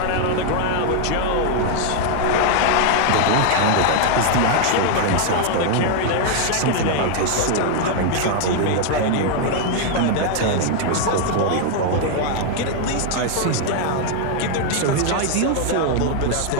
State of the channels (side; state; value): both; different; correlation 0.00